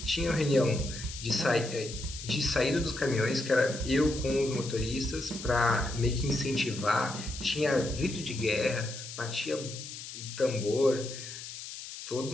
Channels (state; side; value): noise; left; hiss, 10 dB below the sound